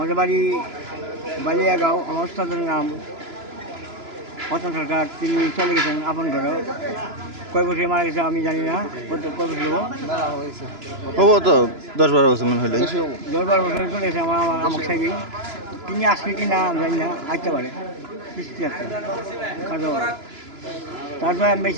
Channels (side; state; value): left; late; 3.0 ms